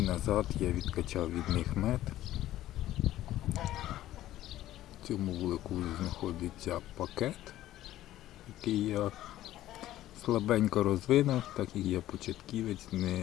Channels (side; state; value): right; quieter; 14.1 dB